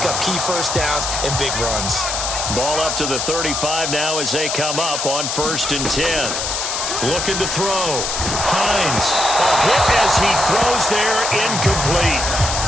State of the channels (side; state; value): left; noise; hiss, 2 dB below the sound